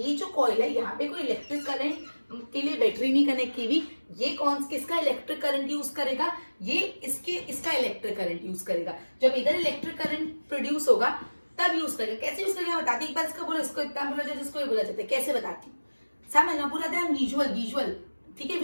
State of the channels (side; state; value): both; inverted; correlation -1.00